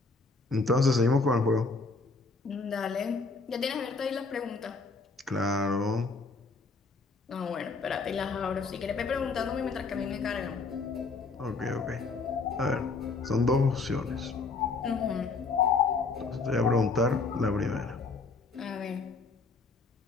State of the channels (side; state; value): right; quieter; 4.1 dB